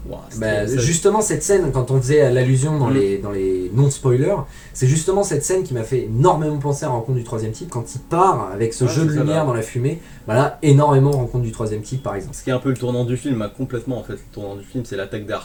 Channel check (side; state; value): both; identical; correlation 1.00